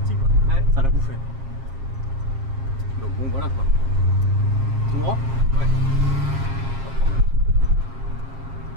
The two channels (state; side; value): late; left; 7.5 ms